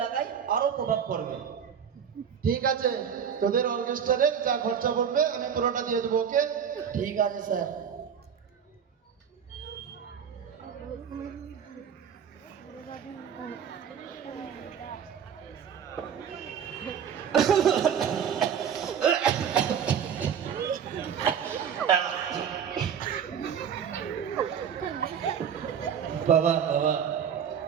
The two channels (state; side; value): quieter; left; 7.9 dB